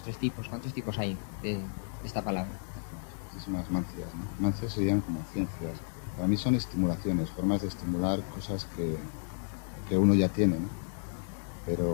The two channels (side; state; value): right; silent; 56 dB below the other